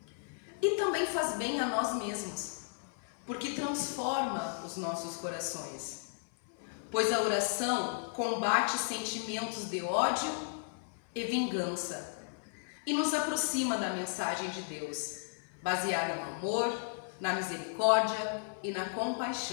E também faz bem a nós mesmos, porque transforma os nossos corações. Pois a oração combate sentimentos de ódio e vingança e nos aproxima da mensagem de Deus, baseada no amor, na misericórdia e na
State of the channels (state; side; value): silent; right; 55 dB below the other